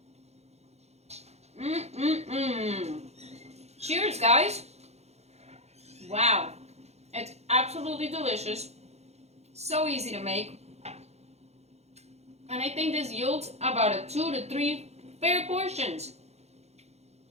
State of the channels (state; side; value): late; left; 0.31 ms